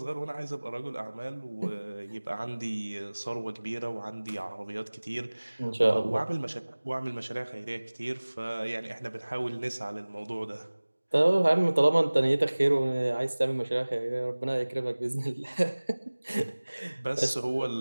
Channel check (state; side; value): inverted; both; correlation -1.00